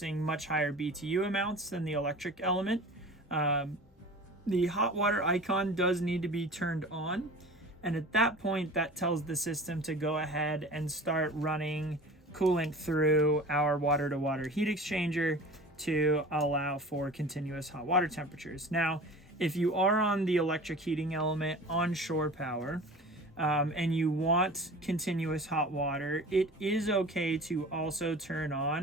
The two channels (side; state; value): both; normal; correlation 0.39